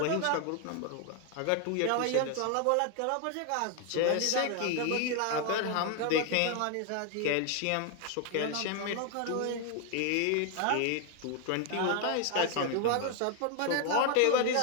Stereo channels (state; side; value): different; both; correlation 0.01